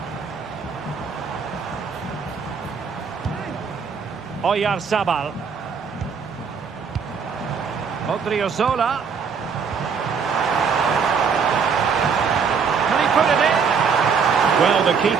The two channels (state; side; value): quieter; left; 6.0 dB